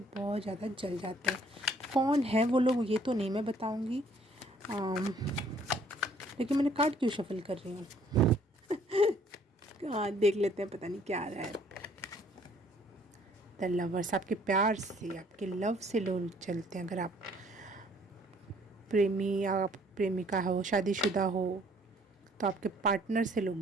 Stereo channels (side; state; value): both; normal; correlation 0.60